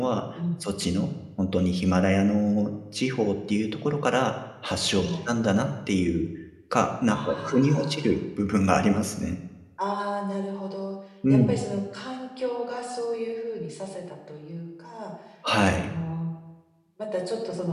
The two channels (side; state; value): both; identical; correlation 1.00